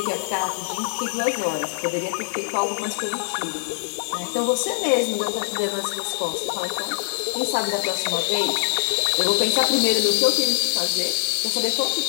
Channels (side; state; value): right; silent; digital silence